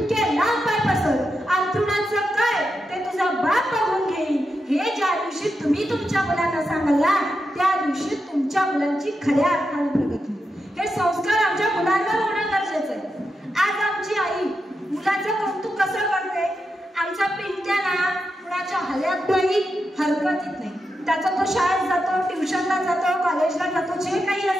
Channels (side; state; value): both; normal; correlation 0.87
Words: लांब पाय पसर, अंथरुणाचं काय ते तुझा बाप बघून घेईल, हे ज्या दिवशी तुम्ही तुमच्या मुलांना सांगाल ना, त्या दिवशी तुमच्या मुलांची खऱ्या अर्थाने प्रगती. हे संस्कार आमच्या मुलांवर होणं गरजेचं आहे. आज आमची आई मुलाचं कौतुक कसं करते, आमचा पिंट्या ना कुणाच्या हल्यात नाही, हरकतीत नाही. त्याचा तो शाळेत जातो, ट्युशनला जातो, कॉलेजला जातो, जे काही